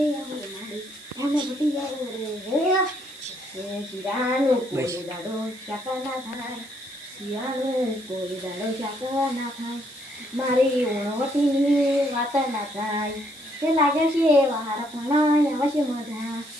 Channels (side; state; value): right; noise; hiss, 22 dB below the sound